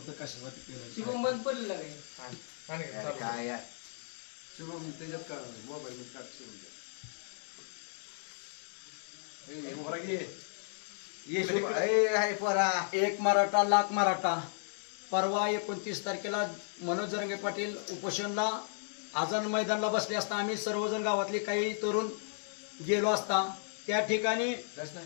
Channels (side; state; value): right; silent; digital silence